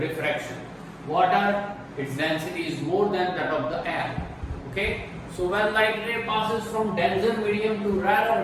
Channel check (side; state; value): both; identical; correlation 1.00